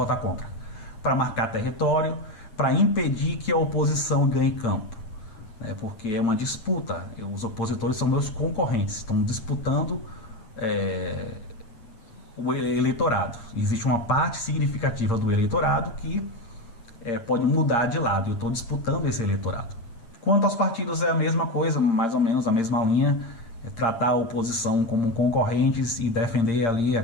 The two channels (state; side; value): late; right; 8.6 ms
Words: contra. Para marcar território, para impedir que a oposição ganhe campo, né? Porque é uma disputa, os opositores são meus concorrentes, estão disputando o eleitorado. Existe uma parte significativa do eleitorado que pode mudar de lado, eu estou disputando esse eleitorado. Quanto aos partidos é a mesma coisa, mais ou menos a mesma linha, tratar a oposição como concorrentes e defender ali